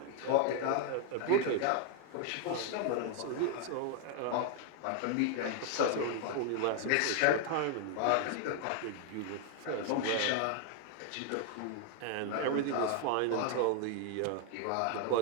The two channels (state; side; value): different; both; correlation 0.00